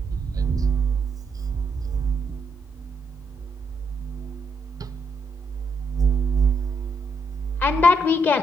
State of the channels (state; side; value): normal; both; correlation 0.78